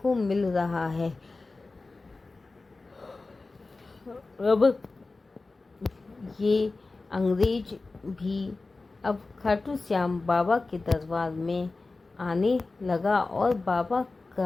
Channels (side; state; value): right; quieter; 3.5 dB